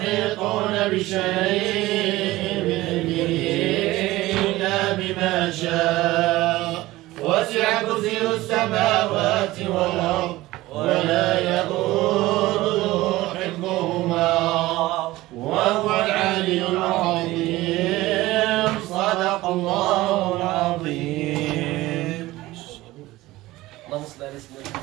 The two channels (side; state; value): left; quieter; 18.0 dB